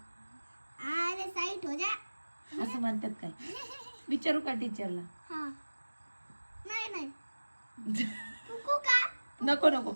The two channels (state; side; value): inverted; both; correlation -1.00